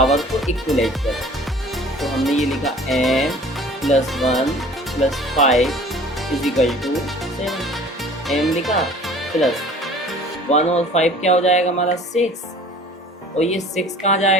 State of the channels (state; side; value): normal; both; correlation 0.48